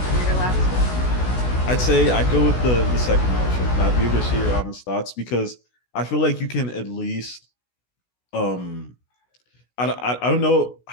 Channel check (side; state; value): right; late; 16 ms